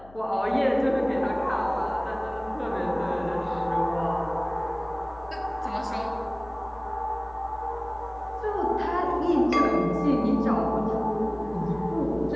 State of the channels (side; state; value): left; noise; hum, 23 dB below the sound